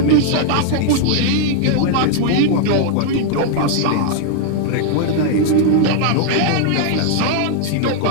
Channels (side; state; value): both; different; correlation 0.00